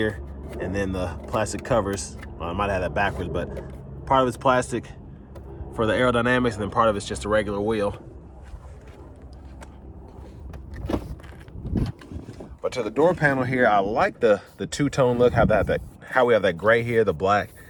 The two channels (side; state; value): both; identical; correlation 1.00